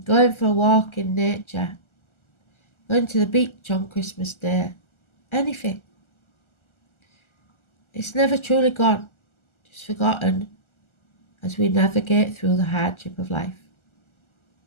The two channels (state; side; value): late; right; 1.4 ms